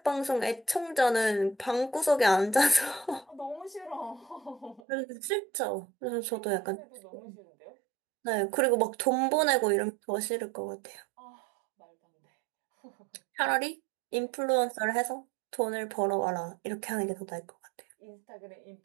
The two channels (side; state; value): left; drops out; at 4.8 s